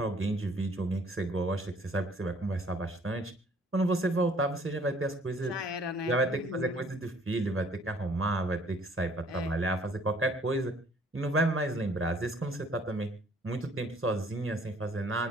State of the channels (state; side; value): normal; both; correlation 0.59